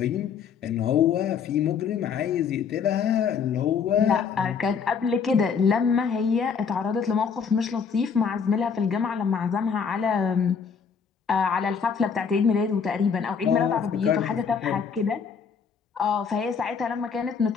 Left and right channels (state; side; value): quieter; right; 6.3 dB